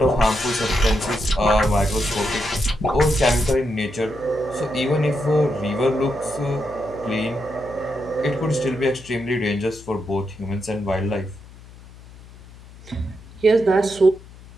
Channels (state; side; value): noise; left; hum, 20 dB below the sound